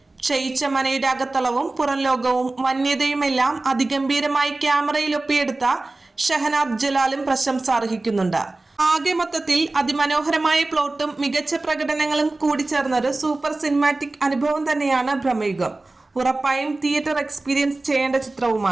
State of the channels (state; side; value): quieter; left; 3.1 dB